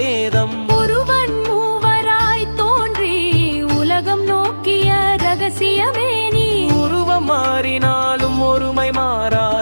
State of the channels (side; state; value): both; inverted; correlation -1.00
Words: ஒருவன் மூவராய் தோன்றி உலகம் நோக்கிய ரகசியமே நீ. உருவம் மாறினாலும் ஒருமை